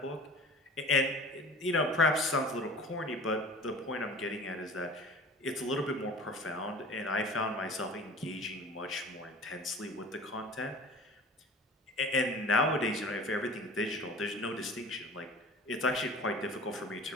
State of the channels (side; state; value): both; normal; correlation 0.41